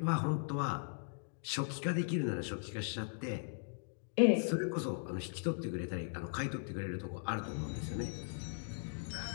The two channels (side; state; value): right; silent; digital silence